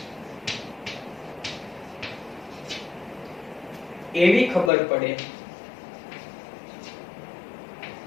એવી ખબર પડે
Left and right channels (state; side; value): drops out; right; at 4.7 s